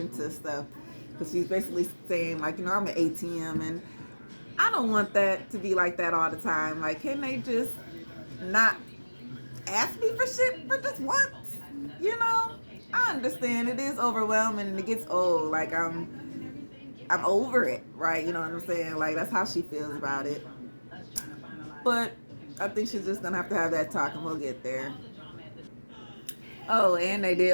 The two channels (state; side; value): inverted; both; correlation -1.00